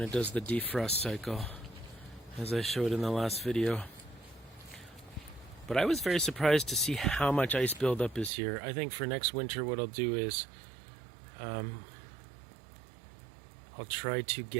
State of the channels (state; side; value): drops out; left; at 8.3 s